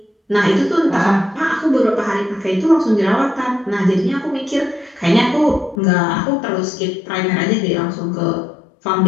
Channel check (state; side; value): drops out; right; at 5.8 s